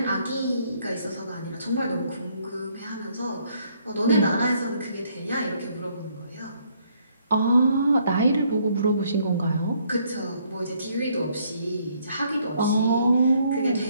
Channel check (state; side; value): inverted; both; correlation -0.68